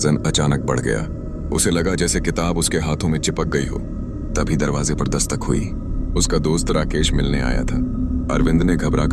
अचानक बढ़ गया। उसे लगा जैसे किताब उसके हाथों में चिपक गई हो। तभी दरवाजे पर दस्तक हुई। उसका दोस्त राकेश मिलने आया था। अरविंद ने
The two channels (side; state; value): both; identical; correlation 1.00